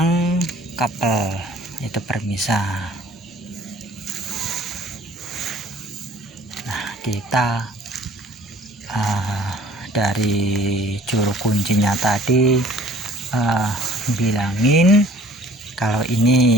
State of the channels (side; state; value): both; normal; correlation 0.52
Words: Kapel itu permisah. Nah, kita dari juru kuncinya tadi bilangin kalau